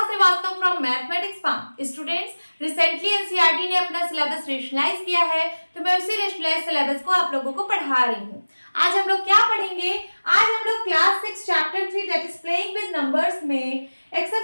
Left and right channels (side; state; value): both; inverted; correlation -1.00